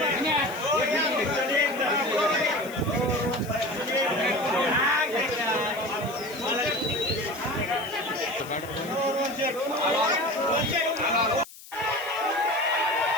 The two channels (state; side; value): noise; left; hiss, 18 dB below the sound